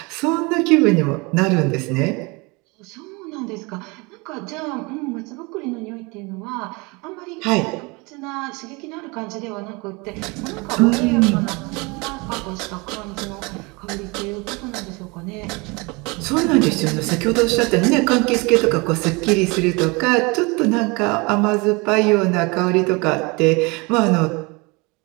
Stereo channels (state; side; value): quieter; left; 27.2 dB